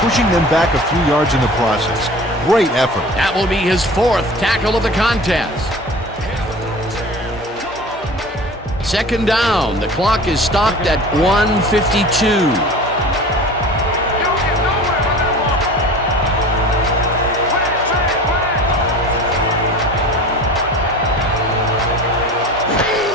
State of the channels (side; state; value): both; normal; correlation 0.39